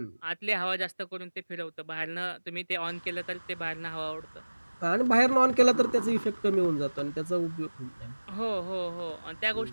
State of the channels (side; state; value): both; inverted; correlation -1.00